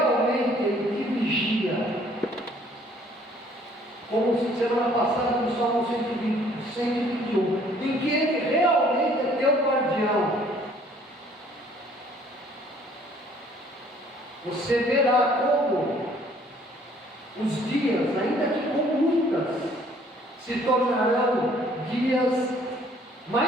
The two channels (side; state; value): both; normal; correlation 0.59